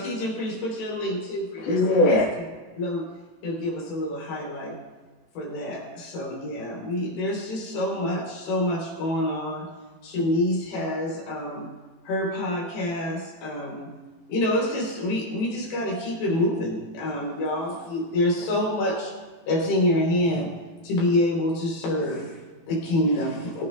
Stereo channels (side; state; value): right; late; 18 ms